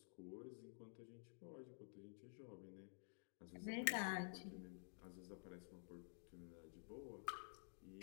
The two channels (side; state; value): right; silent; digital silence